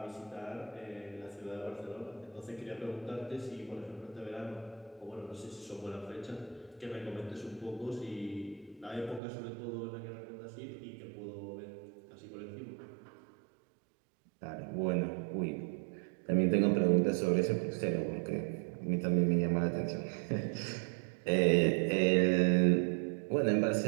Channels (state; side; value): drops out; left; at 9.2 s